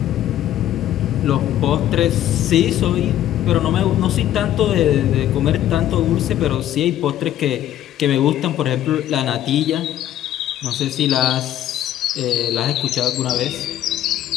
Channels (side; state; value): right; quieter; 12.2 dB